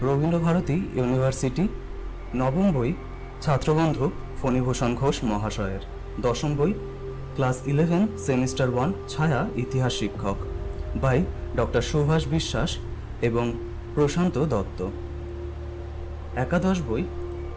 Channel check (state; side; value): identical; both; correlation 1.00